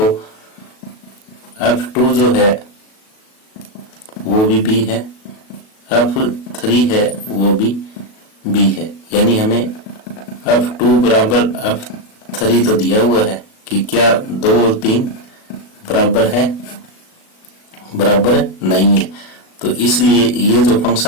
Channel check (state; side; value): late; right; 37 ms